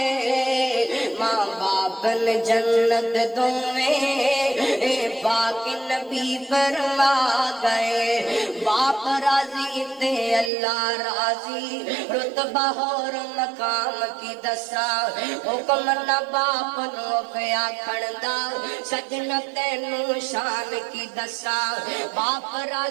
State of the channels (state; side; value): drops out; left; at 10.5 s